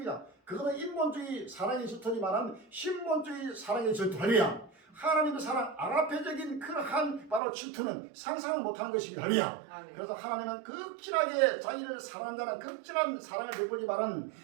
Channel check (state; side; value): drops out; left; at 7.4 s